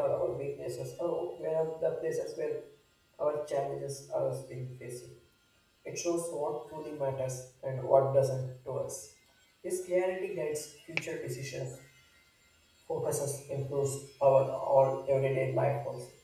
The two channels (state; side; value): identical; both; correlation 1.00